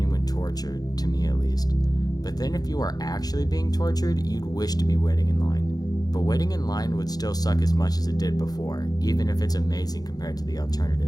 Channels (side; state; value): right; late; 0.19 ms